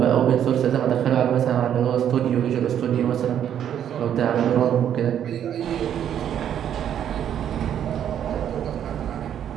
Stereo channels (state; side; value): quieter; left; 9.7 dB